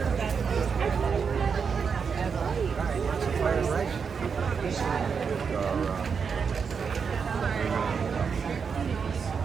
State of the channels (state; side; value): quieter; left; 6.1 dB